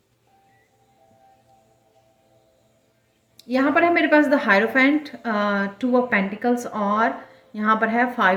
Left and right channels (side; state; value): both; identical; correlation 1.00